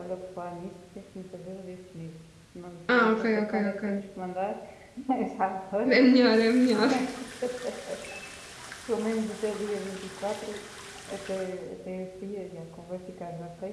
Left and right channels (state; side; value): identical; both; correlation 1.00